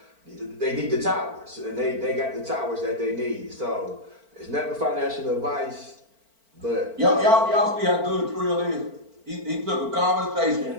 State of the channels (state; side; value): late; left; 4.4 ms